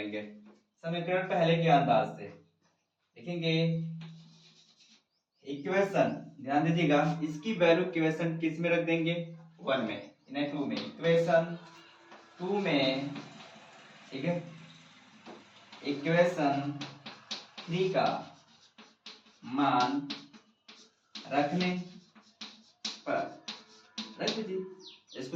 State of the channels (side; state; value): both; identical; correlation 1.00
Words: समीकरण पहले के अंदाज से लिखेंगे। इक्वेशन ध्यान दीजिएगा, इसकी वैल्यू इक्वेशन किस में रख देंगे 1 में, इन्हें 2 में, इक्वेशन 2 में, ठीक है। इक्वेशन 3 का मान रखने पर रख दीजिए।